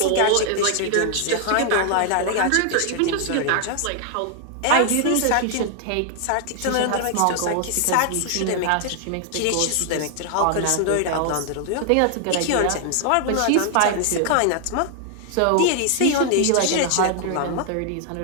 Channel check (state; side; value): different; both; correlation 0.00